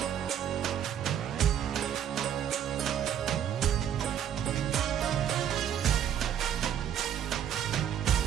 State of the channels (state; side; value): quieter; left; 9.6 dB